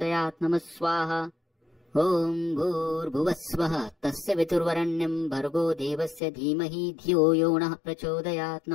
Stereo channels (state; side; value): drops out; right; at 6.2 s